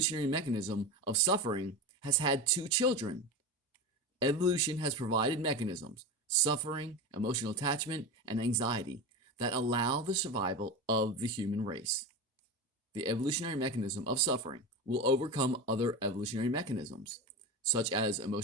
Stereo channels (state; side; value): normal; both; correlation 0.24